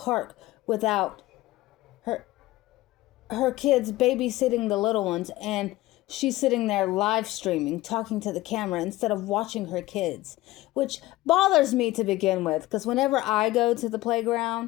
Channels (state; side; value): quieter; right; 17.7 dB